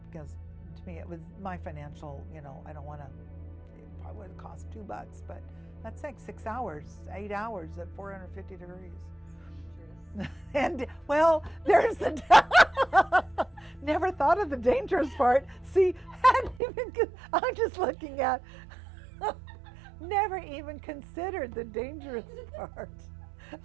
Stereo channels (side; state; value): left; drops out; at 16.6 s